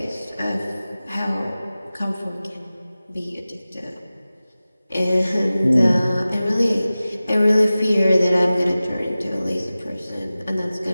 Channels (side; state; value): both; inverted; correlation -0.97